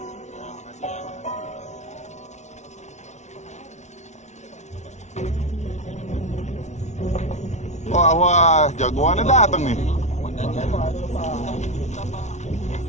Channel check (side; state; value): right; late; 0.33 ms